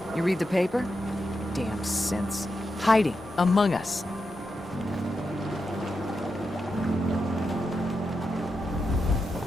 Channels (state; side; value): normal; both; correlation 0.87